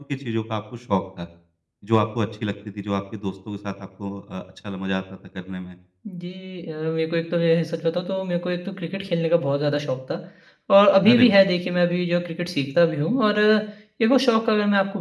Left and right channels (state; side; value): identical; both; correlation 1.00